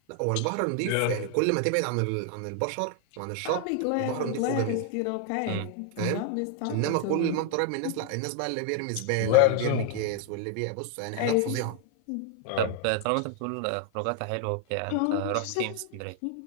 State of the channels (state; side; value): different; both; correlation 0.00